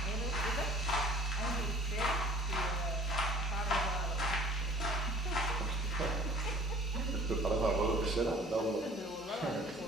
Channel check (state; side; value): normal; both; correlation 0.50